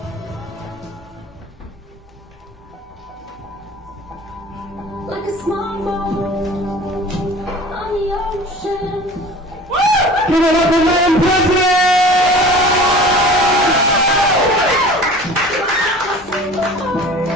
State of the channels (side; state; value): both; normal; correlation 0.42